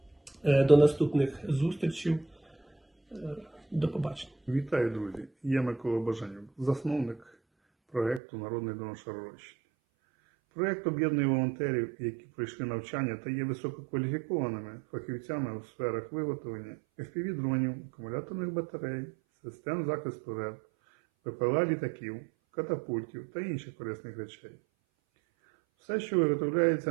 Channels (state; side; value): drops out; left; at 8.2 s